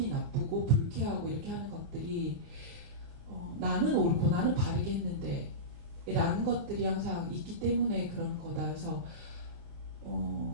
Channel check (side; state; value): left; late; 28 ms